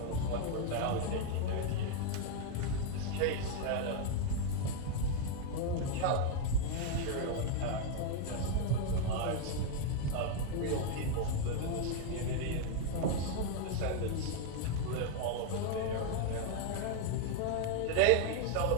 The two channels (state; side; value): different; both; correlation 0.00